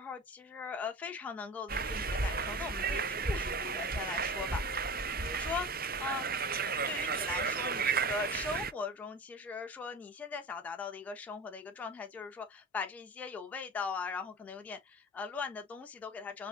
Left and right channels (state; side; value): normal; both; correlation 0.33